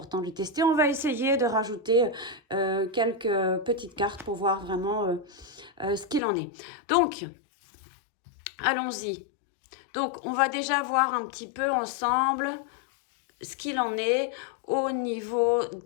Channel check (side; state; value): right; drops out; at 6.2 s